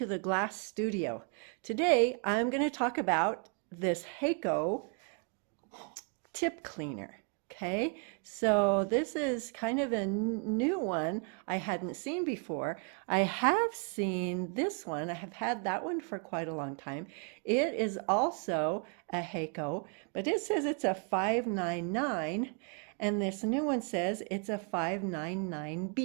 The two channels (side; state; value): left; quieter; 38.9 dB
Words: the Glass Studio. Today I'm going to talk about this Heiko tip cleaner. Okay, so this is kind of a new one I hadn't seen before. I have seen this one. I have had that one for quite a long time. It is also a Heiko, but it says it's a 599, and this new one says it's a